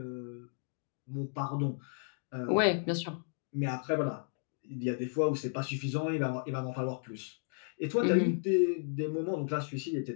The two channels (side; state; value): right; silent; digital silence